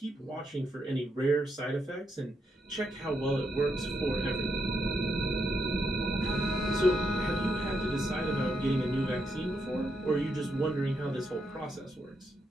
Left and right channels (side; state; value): both; normal; correlation 0.81